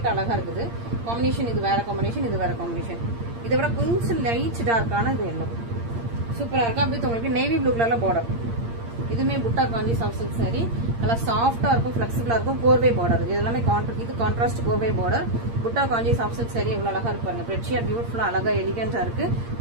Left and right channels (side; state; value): left; late; 8.7 ms